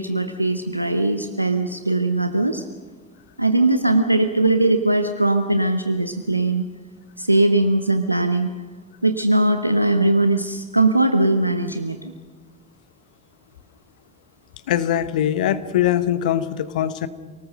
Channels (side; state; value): both; inverted; correlation -0.71